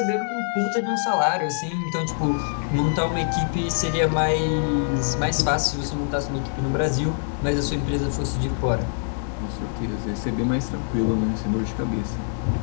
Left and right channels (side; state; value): right; silent; 62 dB below the other